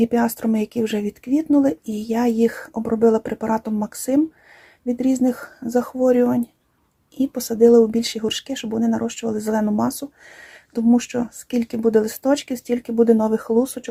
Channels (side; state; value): both; identical; correlation 1.00